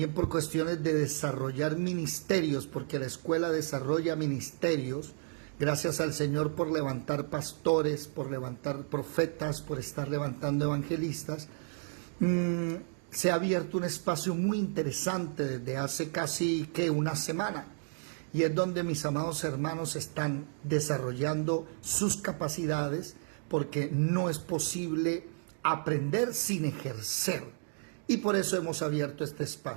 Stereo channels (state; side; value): silent; left; 56 dB below the other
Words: por cuestiones de desarrollar ministerios, porque la escuela desarrolla ministerios. Gracias al Señor por levantar pastores, por levantar profetas, por estar levantando evangelistas. Se ha abierto un espacio muy interesante desde hace casi una semana, y es donde mis amados hermanos están desarrollando sus capacidades, porque no es posible aprender sin ejercer, y por eso hemos abierto este